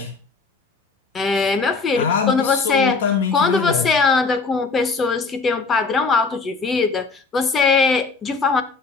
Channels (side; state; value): right; quieter; 4.4 dB